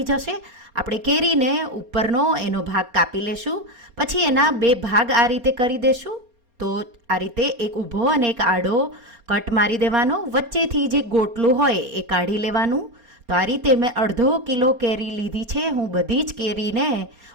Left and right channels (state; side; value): late; left; 4.3 ms